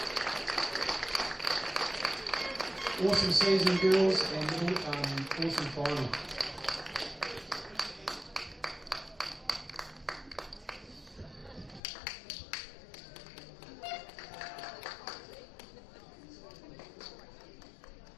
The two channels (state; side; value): drops out; right; at 11.8 s